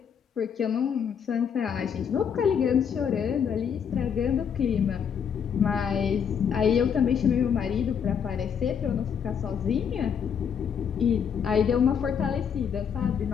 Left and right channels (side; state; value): right; quieter; 7.5 dB